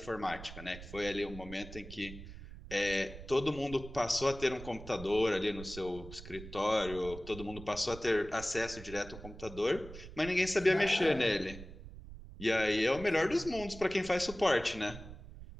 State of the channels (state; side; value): noise; right; rumble, 14 dB below the sound